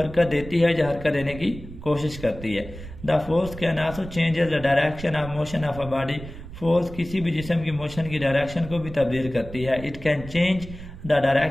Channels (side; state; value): right; noise; rumble, 13 dB below the sound